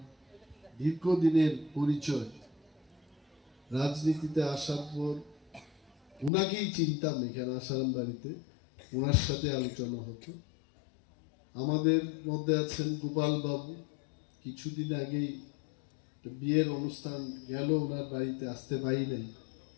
দীর্ঘদিনের পরিচয়। রাজনীতিতে আসার পর ওনাকেই চিনতাম এখানে আসারাম বাড়িতে, ওনার সাথে আলোচনা হতো। আমাদের মধ্যে আছেন গোপাল বাবু, কিছুদিন আগেই বিয়ের অনুষ্ঠান গেল, ওনার বাড়িতে আসতে পারি নাই।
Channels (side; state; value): right; drops out; at 6.3 s